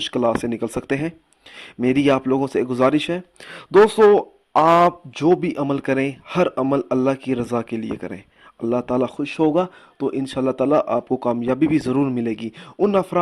سے نکل سکتے ہیں۔ میری آپ لوگوں سے گزارش ہے، دوستو، آپ جو بھی عمل کریں، ہر عمل اللہ کی رضا کے لیے کریں۔ اللہ تعالیٰ خوش ہوگا تو انشاءاللہ تعالیٰ آپ کو کامیابی بھی ضرور ملے گی۔ ان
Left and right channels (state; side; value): identical; both; correlation 1.00